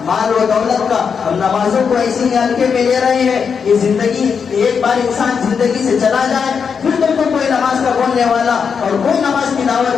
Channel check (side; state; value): right; quieter; 6.3 dB